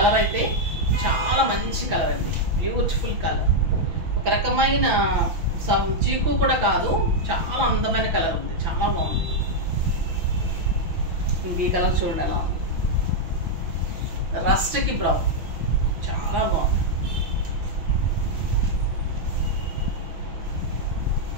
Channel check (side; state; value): left; late; 6.0 ms